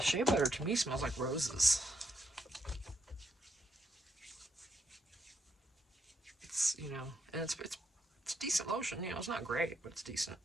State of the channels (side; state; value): both; normal; correlation 0.77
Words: shea butter to me smells like roses. It's, and it's decent lotion. It's not great, but it's decent.